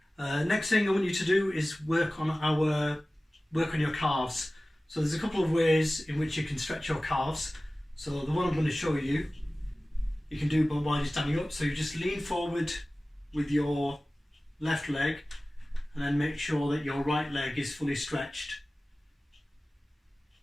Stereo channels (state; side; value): normal; both; correlation 0.97